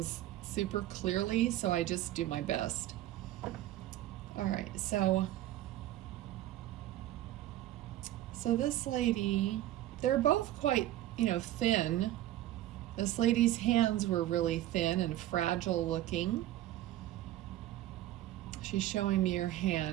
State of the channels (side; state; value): left; quieter; 14.1 dB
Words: super clearly, so I just do my best. All right, so this lady, they're both quite, thin. This lady's hands were really thin and fragile looking. She's showing me her